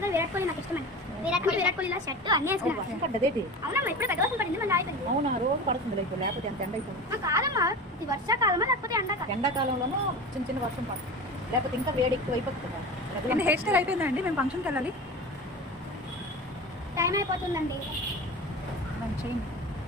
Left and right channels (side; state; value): both; normal; correlation 0.31